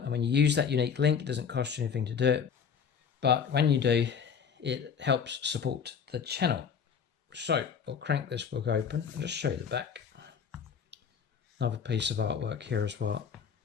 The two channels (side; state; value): right; quieter; 6.9 dB